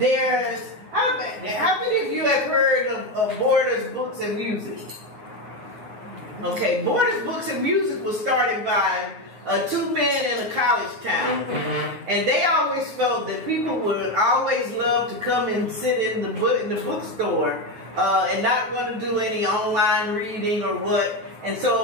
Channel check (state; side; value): late; left; 9.1 ms